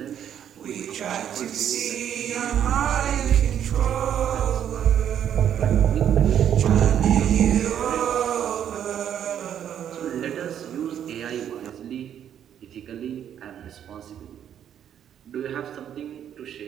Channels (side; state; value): left; quieter; 9.6 dB